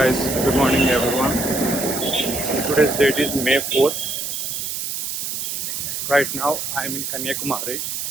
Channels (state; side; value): noise; right; hiss, 4 dB below the sound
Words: good morning everyone. Today's date is May 4th. Right now I am in Kanyakumari.